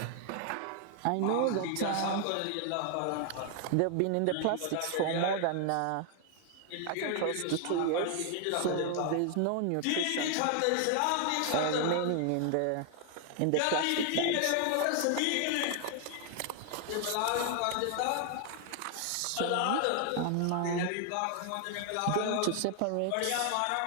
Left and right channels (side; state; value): both; different; correlation 0.00